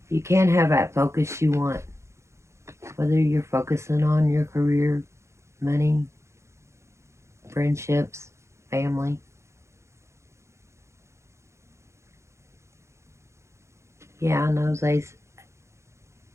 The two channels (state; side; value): late; left; 0.14 ms